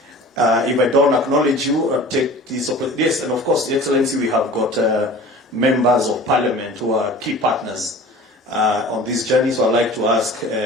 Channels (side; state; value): both; normal; correlation 0.42